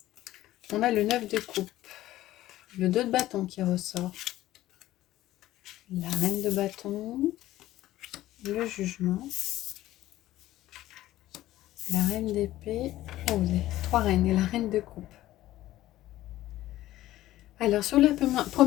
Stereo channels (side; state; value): right; quieter; 15.1 dB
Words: a le 9 de coupe, le 2 de bâton qui ressort, la reine de bâton, le jugement, la reine d'épée, les 3 reines et la reine de coupe. Alors, sur la